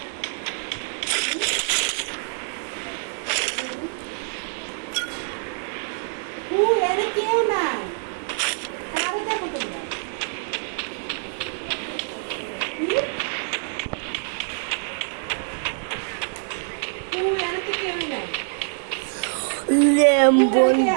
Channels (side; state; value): left; silent; digital silence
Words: এনে কেউ নাই কারে দেখো তোমরা এনে তো কেউ নাই